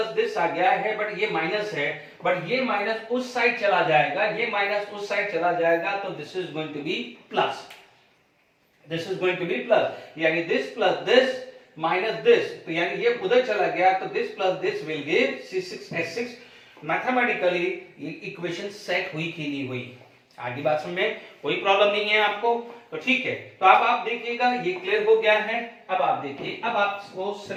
दिस आ गया है बट ये माइनस है, बट ये माइनस उस साइड चला जाएगा, ये माइनस उस साइड चला जाएगा, तो this is going to be plus, this is going to be plus, यानी this plus this minus this, तो यानी ये उधर चला गया, तो this plus this will give C6H6। Mathematically ये इक्वेशन सेट हुई कि नहीं हुई, आगे बात में कोई प्रॉब्लम नहीं है आपको, तो ठीक है। तो अब आप देखिएगा ये क्लियर हो गया है। अब आप देखिए, अब आपको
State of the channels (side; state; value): both; identical; correlation 1.00